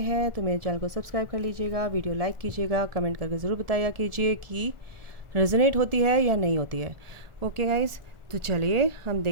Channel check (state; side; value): late; left; 1.4 ms